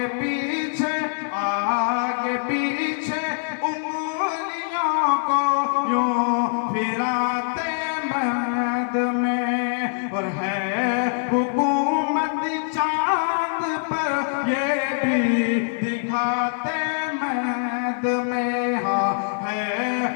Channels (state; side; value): silent; right; 63 dB below the other